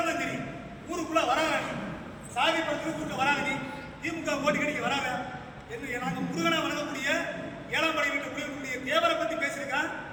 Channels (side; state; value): both; identical; correlation 1.00